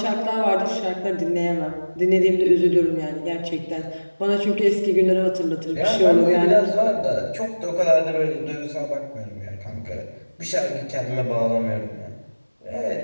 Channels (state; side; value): inverted; both; correlation -1.00